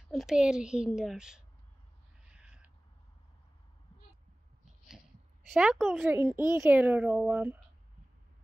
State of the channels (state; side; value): normal; both; correlation 0.98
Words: een paar hinders. Zo komt ze in één keer rollen.